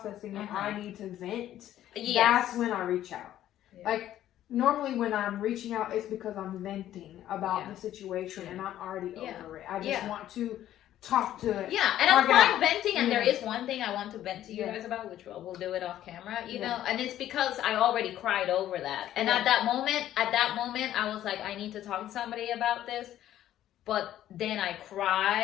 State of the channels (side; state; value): right; quieter; 12.4 dB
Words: and Uh-huh. I need to vent, Yes. that's when I reach out. Yeah. Like normally when I'm reaching out, it's because I'm venting about Yeah. the situation and I'm already Yeah. over it. I just Yeah. want to talk to it. Yeah, and I'm Talk it fine out. venting, and there Yeah. is one thing I want to vent to you Yeah. guys about, which we'll do it off camera, you Yeah. know, and it's because I already cried over that. And Yeah. at that moment, I was like, I need to talk to somebody about this. But then I